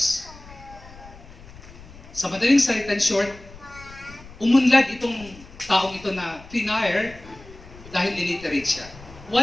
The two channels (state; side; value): noise; left; rumble, 19 dB below the sound